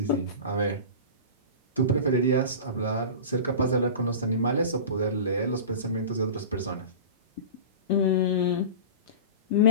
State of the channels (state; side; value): inverted; both; correlation -0.31